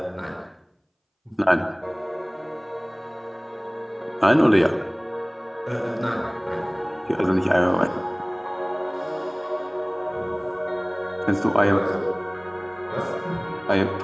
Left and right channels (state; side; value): identical; both; correlation 1.00